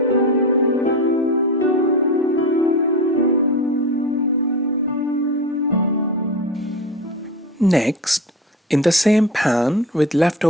Next, in the same pan with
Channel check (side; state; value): both; normal; correlation 0.26